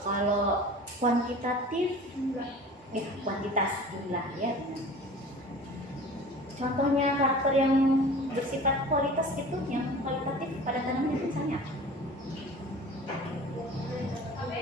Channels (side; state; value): both; normal; correlation 0.41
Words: kuantitatif kuantitas jumlah ya. Contohnya karakter yang bersifat kualitas itu, yang kualitatif pada tanaman misalnya.